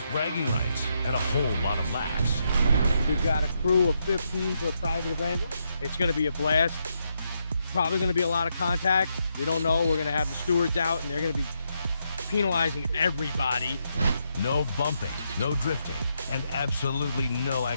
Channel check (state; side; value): inverted; both; correlation -0.80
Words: bragging rights and a whole lot of laughs. We've got a crew of 15 for a private event. It's going to be a blast. Probably going to be a lot of contact. We don't know. We're going to have the stewards out, and they're going to be penalizing everybody. No bumping, no drifting, and absolutely no